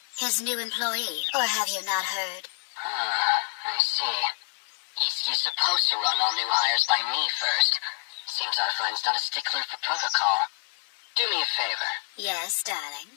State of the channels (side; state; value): right; silent; digital silence